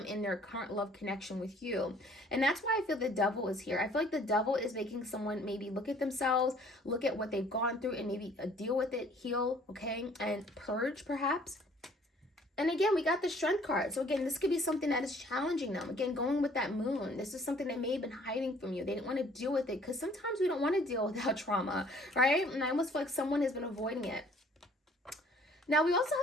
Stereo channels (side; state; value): both; normal; correlation 0.57